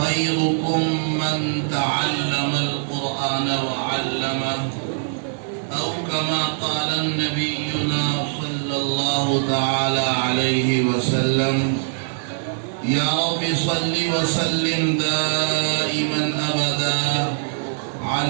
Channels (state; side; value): silent; left; 57 dB below the other